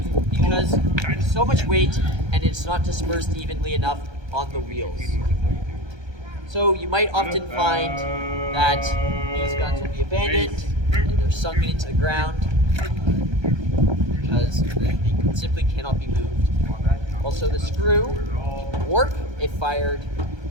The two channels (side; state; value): left; late; 1.3 ms